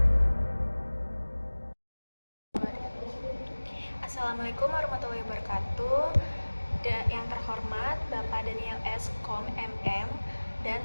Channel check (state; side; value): inverted; both; correlation -1.00